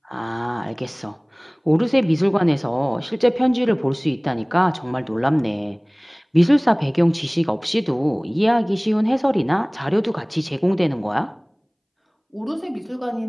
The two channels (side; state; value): both; identical; correlation 1.00